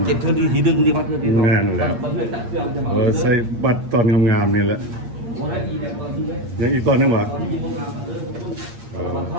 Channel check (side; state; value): left; late; 8.6 ms